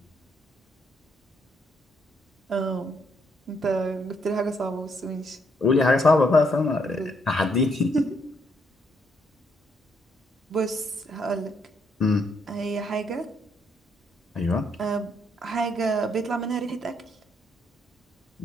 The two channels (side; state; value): both; normal; correlation 0.73